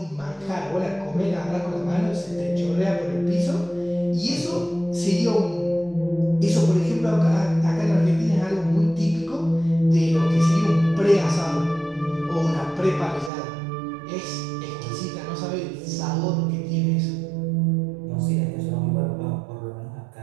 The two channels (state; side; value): drops out; left; at 13.3 s